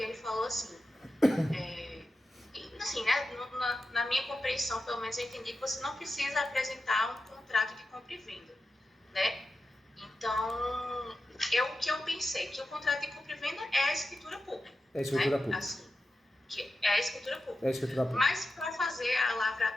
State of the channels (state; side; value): normal; both; correlation 0.91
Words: ele falou assim, assim, né? Na minha compreensão, pelo menos eu entendi que você não precisa apresentar um contrato de compra e venda, né? Então, o que eu pensei, que o contrato de compra e venda é a escritura pública. É a escritura pública. Assim, é a escritura pública. É a escritura pública. Mas para fazer a